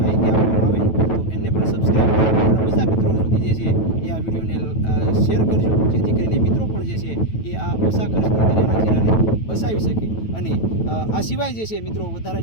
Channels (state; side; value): late; right; 9.2 ms